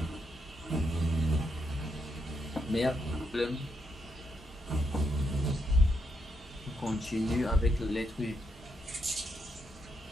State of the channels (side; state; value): both; normal; correlation 0.80